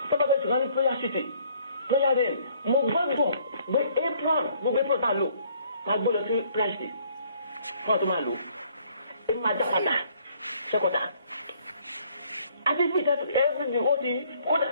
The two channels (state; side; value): inverted; both; correlation -0.62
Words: tọ́pọ̀ tí wọ́n ní prayer city prayer day mo gbọ́dọ̀ gbé apron tá a lò máa gbé lọ sí prayer city fún ọ̀tún máa lò èmi máa dá padà sẹ́kọ̀tà àti bí ìtẹ́tù everything ó ti